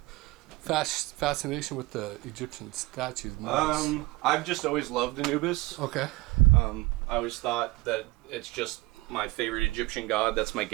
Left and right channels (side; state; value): left; quieter; 21.8 dB